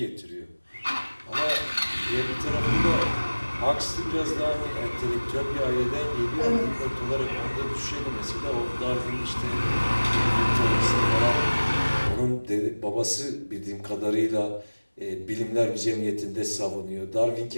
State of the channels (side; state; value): both; inverted; correlation -1.00